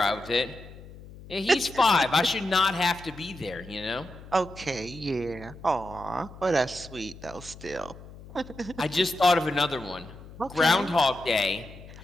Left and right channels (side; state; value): left; noise; hum, 17 dB below the sound